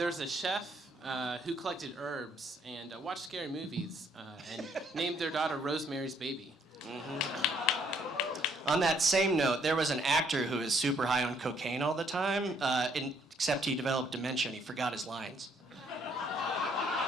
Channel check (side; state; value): both; normal; correlation 0.67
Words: chef who collected herbs and watched scary movies and named their daughter Rosemary's Baby. Mm-hmm. On that same note, there was an actor who was super high on cocaine all the time, except he developed dementia and he forgot his lines. All